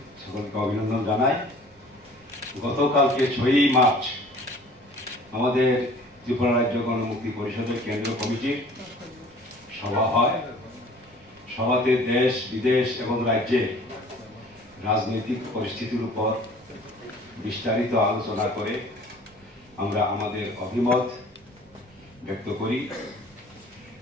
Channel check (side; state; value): right; noise; rumble, 29 dB below the sound